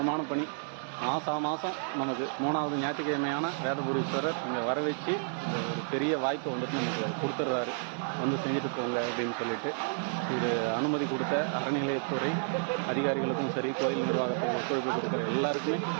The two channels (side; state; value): left; silent; 57 dB below the other